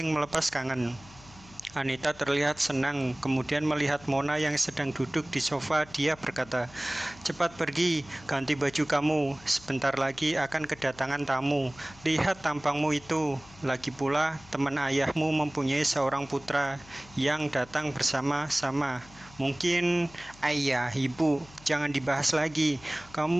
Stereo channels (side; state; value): left; noise; hum, 22 dB below the sound